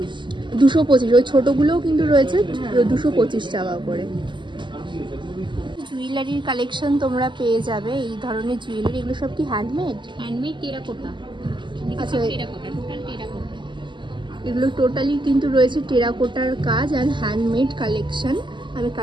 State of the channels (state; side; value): late; left; 0.23 ms